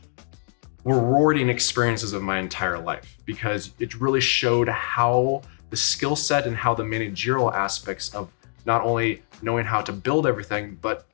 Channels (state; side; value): silent; right; 55 dB below the other